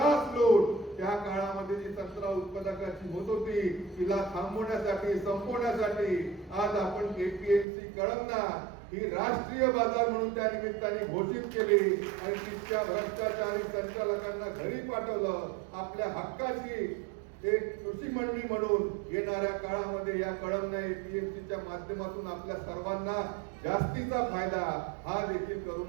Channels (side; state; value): left; drops out; at 7.7 s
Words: लूट त्या काळामध्ये जी संत्रा उत्पादकाची होत होती तिला थांबवण्यासाठी, संपवण्यासाठी आज आपण एपीएमसी कळमना ही राष्ट्रीय बाजार म्हणून त्या निमित्ताने घोषित केली आणि तिथच्या भ्रष्टाचारी संचालकांना घरी पाठवलं. आपल्या हक्काची एक कृषी मंडळी म्हणून येणाऱ्या काळामध्ये या कळमना एपीएमसीच्या माध्यमातून आपल्या सर्वांना जास्तीचा फायदा हा देखील